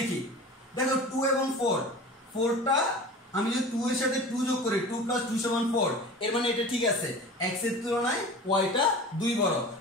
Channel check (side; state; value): both; normal; correlation 0.37